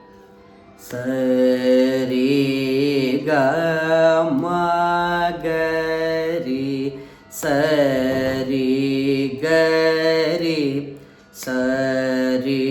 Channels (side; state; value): both; identical; correlation 1.00